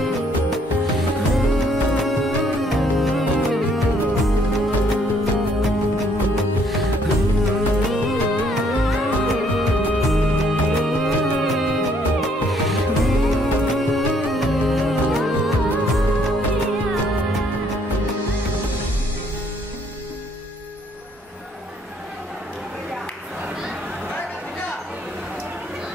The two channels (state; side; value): normal; both; correlation 0.66